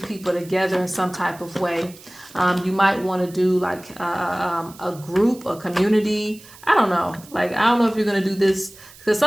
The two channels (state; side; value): noise; right; hiss, 21 dB below the sound